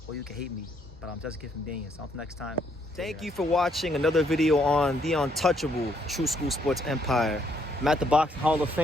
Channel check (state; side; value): normal; both; correlation 0.70